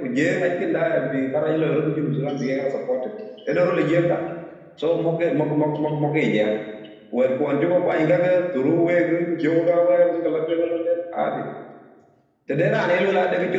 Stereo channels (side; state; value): both; identical; correlation 1.00